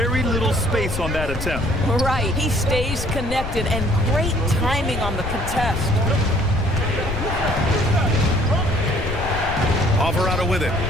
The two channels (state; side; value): noise; left; rumble, 6 dB below the sound